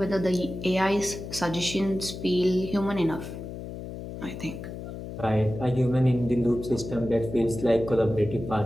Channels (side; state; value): left; noise; hum, 9 dB below the sound